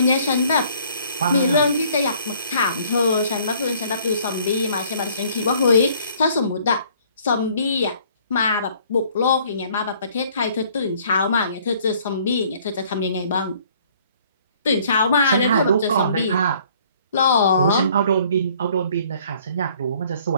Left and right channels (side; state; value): both; inverted; correlation -0.58